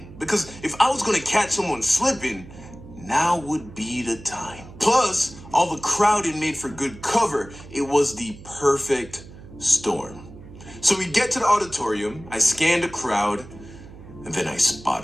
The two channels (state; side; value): noise; right; hum, 17 dB below the sound